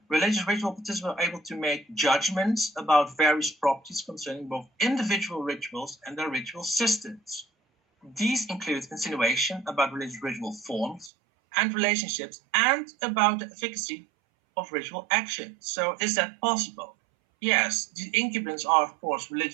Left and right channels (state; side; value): drops out; left; at 11.1 s